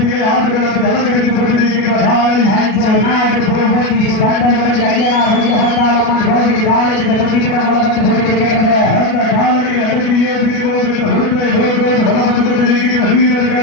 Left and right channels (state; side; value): late; right; 36 ms